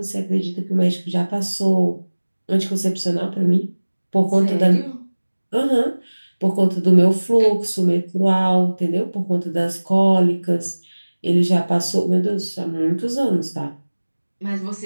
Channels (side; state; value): both; inverted; correlation -1.00